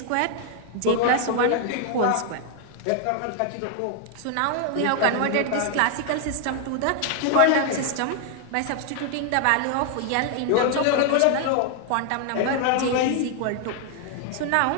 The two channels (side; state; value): both; different; correlation 0.00